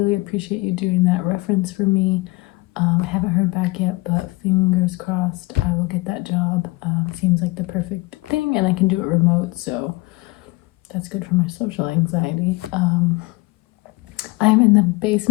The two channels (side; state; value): right; quieter; 23.3 dB